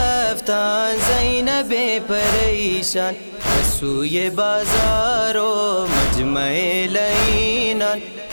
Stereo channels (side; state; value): both; inverted; correlation -1.00